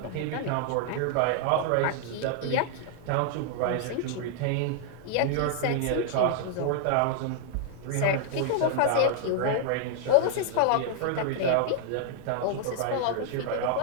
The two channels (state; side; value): different; both; correlation 0.00